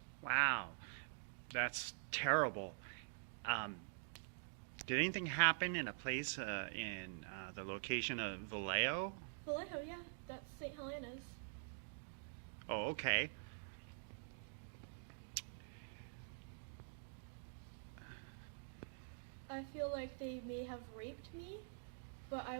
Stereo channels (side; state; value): left; silent; digital silence